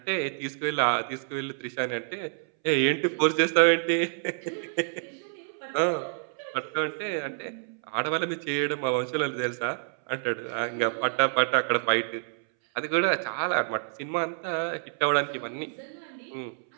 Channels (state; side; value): silent; left; 59 dB below the other